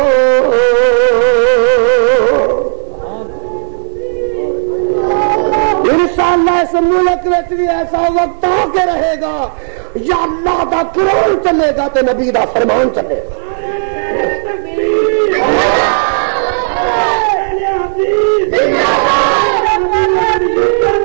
انشاءاللہ اس ملک وچ بھی ایسا وقت آ کے رہے گا یا اللہ دا قرآن چلے گا تے نبی دا فرمان چلے گا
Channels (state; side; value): silent; left; digital silence